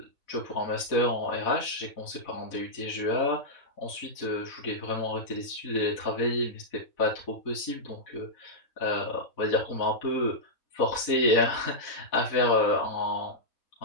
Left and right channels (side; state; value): right; late; 4.1 ms